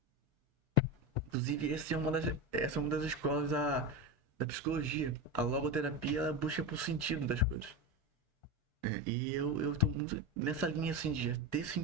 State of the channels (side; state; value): both; normal; correlation 0.19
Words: Inclusive, essa é uma das escolas da psicologia. A logoterapia ela busca por sentido das coisas. E eu tô muito nessa linha assim de ter